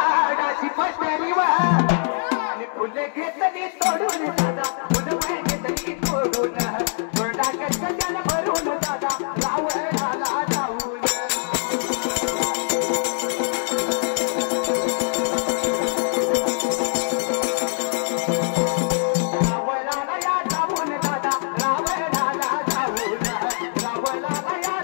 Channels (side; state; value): right; silent; digital silence